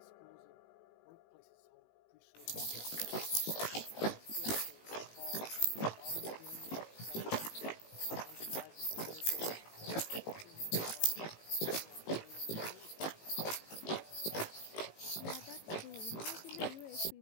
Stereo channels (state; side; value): late; right; 18 ms